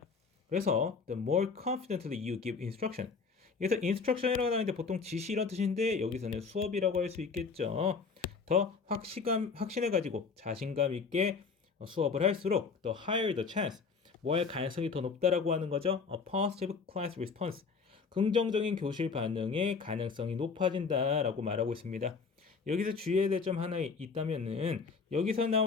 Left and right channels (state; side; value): quieter; right; 5.1 dB